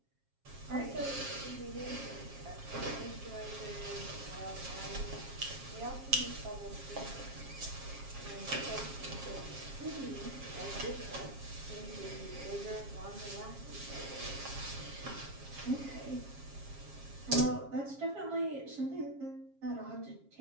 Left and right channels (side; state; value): left; late; 7.4 ms